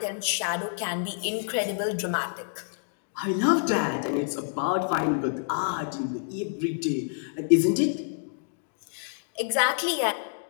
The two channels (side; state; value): right; silent; digital silence